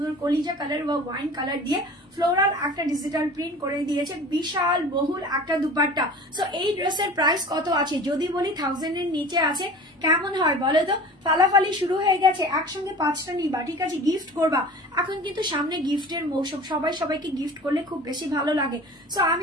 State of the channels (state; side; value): normal; both; correlation 0.40